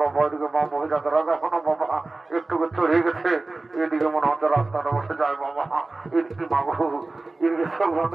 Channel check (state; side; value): quieter; left; 3.3 dB